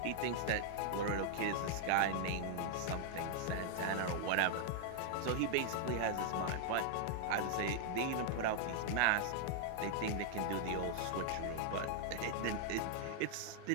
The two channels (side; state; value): both; different; correlation -0.01